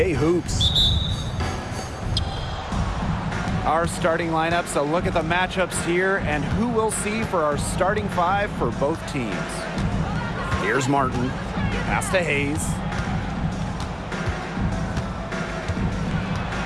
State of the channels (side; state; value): both; identical; correlation 1.00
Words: hoops. Our starting lineups, a look at the matchups here and who we'll see for our starting five for both teams. Here's Martin, pass to Hayes.